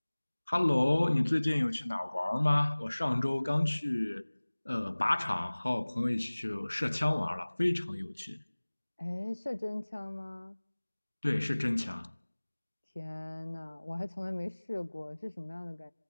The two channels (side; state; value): both; inverted; correlation -1.00